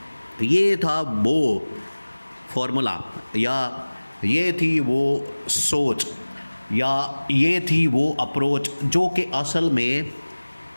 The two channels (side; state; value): both; inverted; correlation -1.00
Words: یہ تھا وہ فارمولا، یا یہ تھی وہ سوچ، یا یہ تھی وہ اپروچ جو کہ اصل میں